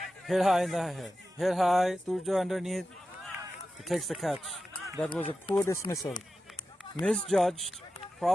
Hit high in the head. Hit high, Turjo underneath. He takes the catch. That was a poor dismissal. Misjudged.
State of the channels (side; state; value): both; normal; correlation 0.92